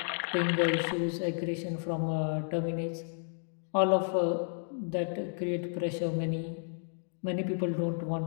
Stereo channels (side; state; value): right; silent; digital silence